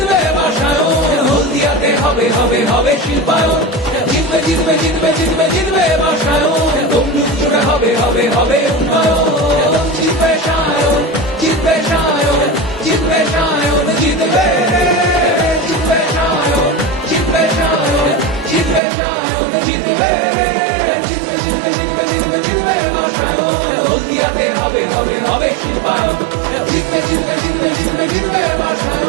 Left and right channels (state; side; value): drops out; left; at 18.8 s